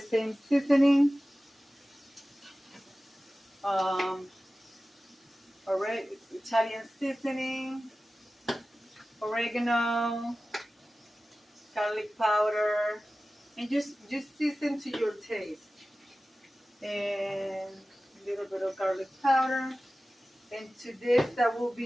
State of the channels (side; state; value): both; normal; correlation 0.96